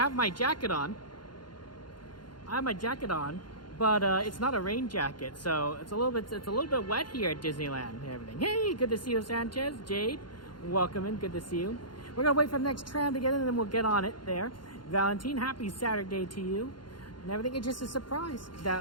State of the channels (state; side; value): late; right; 0.71 ms